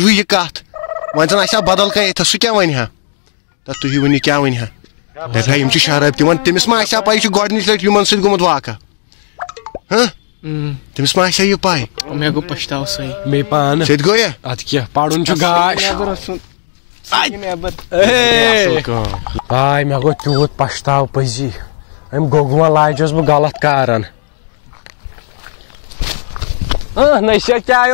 یہِ کتھ وۄنۍ زن آسہِ ہا بدل کانٛہہ ییٚتھس سُہ کیٛاہ ونہِ ہا تُہۍ ؤنِو کیٛاہ ونہِ ہا دپہا یِم چھِ شراب دِوان تٔمِس ما آسہِ ہا پاے یہِ چھُ گۄڈنِچ لٹہِ یِمن سۭتۍ گوٚمُت واقعہ تٔمِس ما آسہِ ہا یہِ پاے مےٚ گوٚو پٔشتاو سٲنۍ مے پانہٕ سیٚدِ گوٚو یا ادٕ کیٛاہ پرُن چھُ گاش آے مےٚ گوٚو تیوٗت پشتاو پٔزی أمۍ گوٚگوٗن لاجیوس بہٕ غلط کارن نصیحت کیٛاہ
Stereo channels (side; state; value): right; silent; digital silence